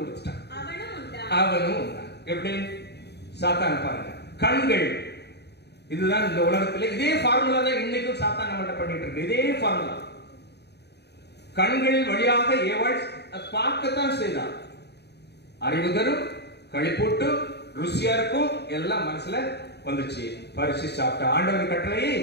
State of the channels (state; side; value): late; right; 0.49 ms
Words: கொடுத்துட்டான், அவனும் உண்டான். எப்படி? சாத்தான் பாருங்க, கண்கள். இதுதான் இந்த உலகத்தில் இதே ஃபார்முலா தான் இன்னைக்கும் சாத்தான் நம்மகிட்ட பண்ணிட்டு இருக்கு. இதே ஃபார்முலா. கண்களின் வழியாக ஏவாள் பார்க்கத்தான் செய்தான். அறிவு தரும், களிப்பூட்டு, ருசியா இருக்கும், எல்லாம் மனசுல வந்துச்சு. பரிசு சாப்பிட்ட ஆண்டவர் கட்டளையை